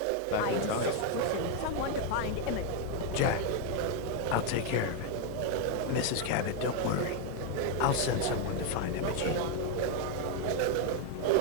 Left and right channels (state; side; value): different; both; correlation 0.01